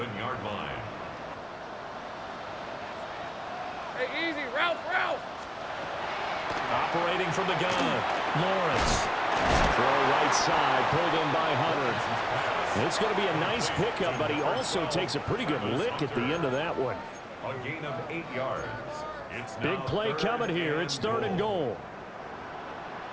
line. Hey, easy. Ralph. Operating from the gun. Lawrence. Throw right side, pulled in by Hunter. It's going to be a nice pickup, but he also takes a pretty good lick at the end of that one. A gain of 8 yards. It's Big play coming here. It's 3rd and goal.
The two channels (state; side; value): identical; both; correlation 1.00